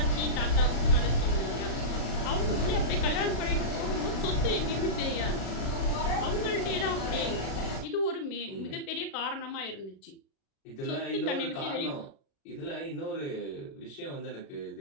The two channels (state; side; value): late; right; 36 ms